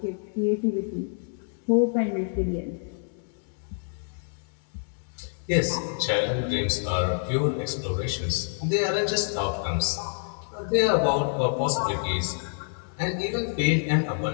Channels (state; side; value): silent; right; digital silence